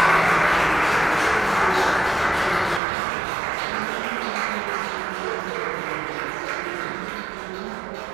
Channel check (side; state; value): left; drops out; at 2.8 s